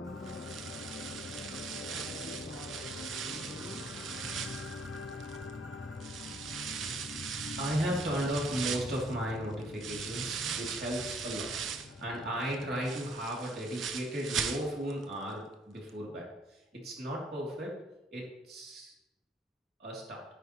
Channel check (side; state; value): both; normal; correlation 0.62